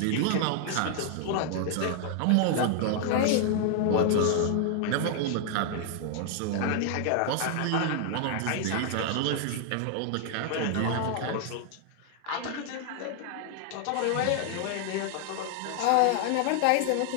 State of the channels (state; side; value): different; both; correlation 0.00